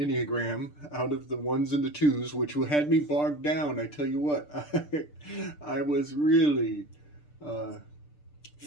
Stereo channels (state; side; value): late; right; 6.7 ms